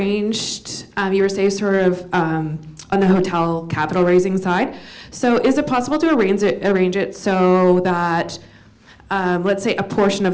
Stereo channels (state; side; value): identical; both; correlation 1.00